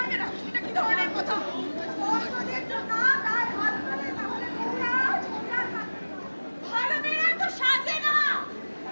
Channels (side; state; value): both; inverted; correlation -1.00